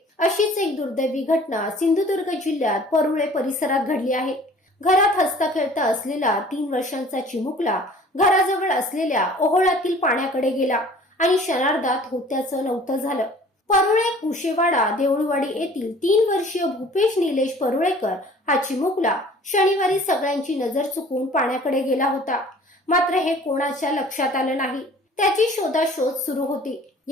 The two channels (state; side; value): normal; both; correlation 0.49